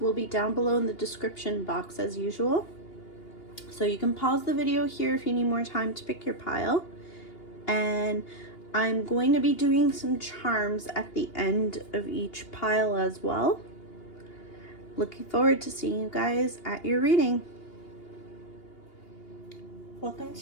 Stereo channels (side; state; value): right; late; 2.8 ms